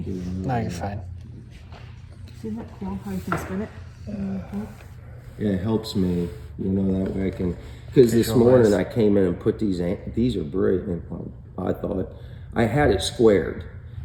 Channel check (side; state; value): both; identical; correlation 1.00